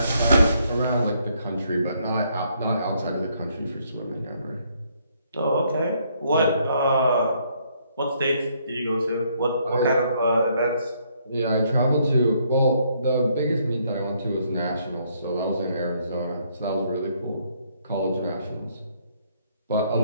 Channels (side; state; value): both; inverted; correlation -0.70